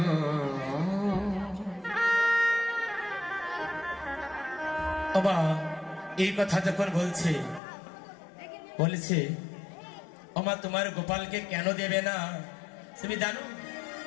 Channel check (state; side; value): drops out; right; at 7.6 s